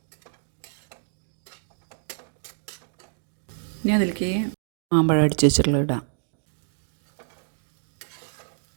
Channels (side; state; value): left; silent; digital silence